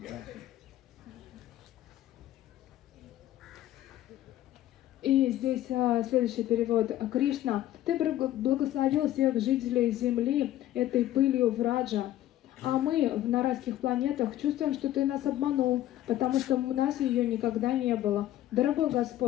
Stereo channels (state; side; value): quieter; right; 13.4 dB